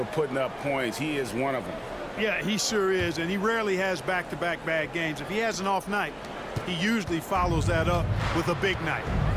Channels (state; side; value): identical; both; correlation 1.00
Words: putting up points. He is one of them. Yeah, he sure is, and he rarely has back-to-back bad games. If he has an off night, he usually follows that up with a big night.